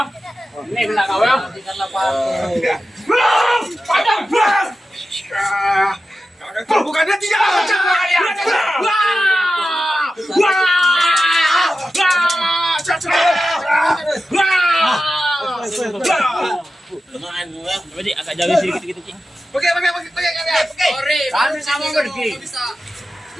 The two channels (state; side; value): normal; both; correlation 0.92